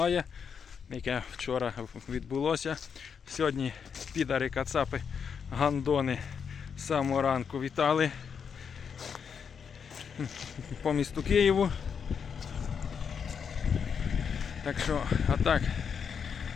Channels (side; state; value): right; quieter; 6.8 dB